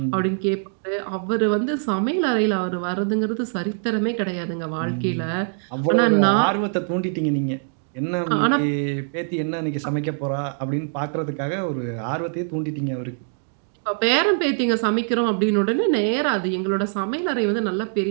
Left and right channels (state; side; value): silent; left; 63 dB below the other